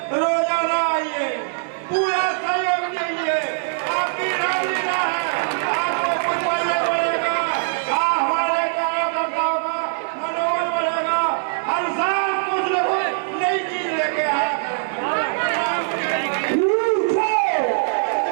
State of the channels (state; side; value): silent; left; 64 dB below the other